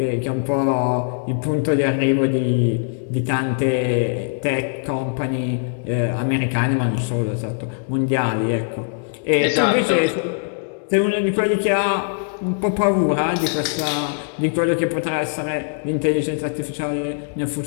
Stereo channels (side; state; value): right; silent; digital silence